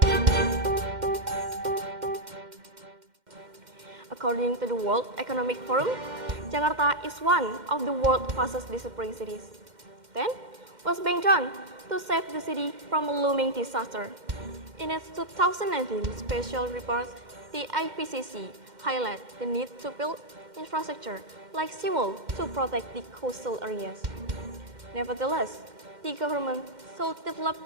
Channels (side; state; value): left; late; 2.1 ms